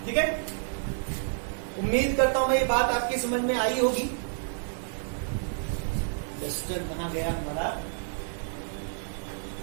ठीक है, उम्मीद करता हूं ये बात आपकी समझ में आई होगी। रजिस्टर कहां गया हमारा,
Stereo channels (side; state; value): left; silent; digital silence